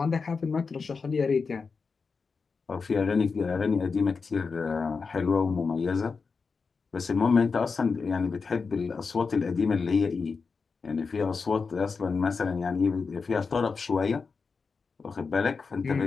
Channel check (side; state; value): right; quieter; 4.9 dB